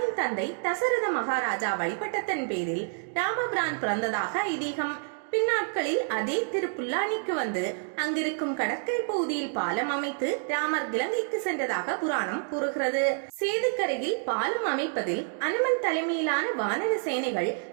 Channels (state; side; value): silent; left; 59 dB below the other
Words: தந்தை தசரத மகாராஜா வழிபட்டதன் பேரில் ராமபிரான் பிறந்ததாக ஐதீகம். பின்னாட்களில் அதே திருப்புல்லானிக்கு வந்து அங்கிருக்கும் கடற்கரை பகுதியில் பாலம் அமைத்து ராமர் இலங்கைக்கு சென்றதாக புராணம் கூறுகிறது. சேதுக்கரையில் பாலம் அமைப்பதில் அனுமன் தலைமையிலான வானர சேனைகள்